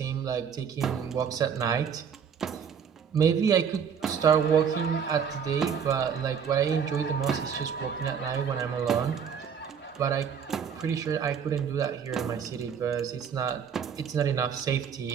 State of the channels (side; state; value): left; quieter; 7.3 dB